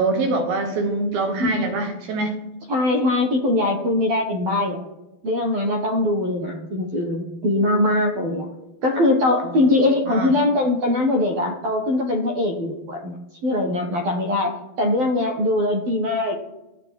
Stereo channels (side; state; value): left; late; 12 ms